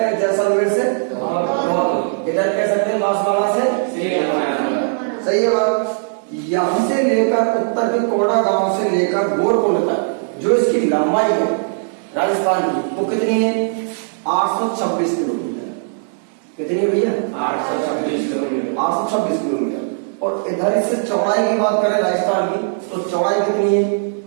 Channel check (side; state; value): left; silent; digital silence